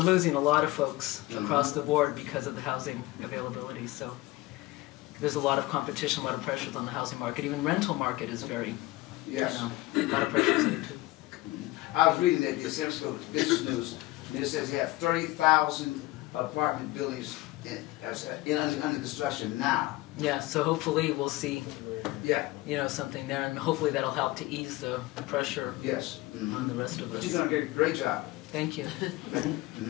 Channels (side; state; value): right; quieter; 19.2 dB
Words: a lot of folks across the board because of the housing availability. So there's a lot of competition, a lot of pressures on the housing market. Even rental market is very, Yes. a lot of pressures in it too. I was reading that the San Francisco Business News, and it says they have 30,000 apartment buildings under construction now. Yeah, so hopefully we'll see, Yeah. something there, and hopefully that'll help to ease the pressure Yes. on the rest of But us. you're doing a great job. Thank you.